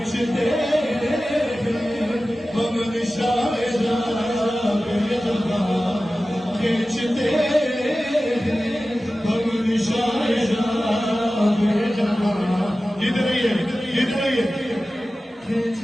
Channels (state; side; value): normal; both; correlation 0.95